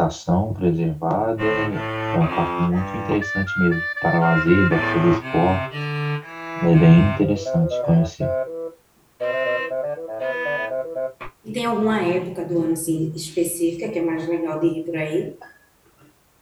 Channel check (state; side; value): identical; both; correlation 1.00